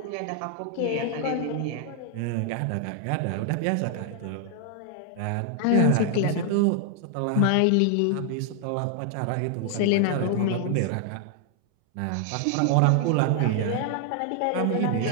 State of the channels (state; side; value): different; both; correlation 0.00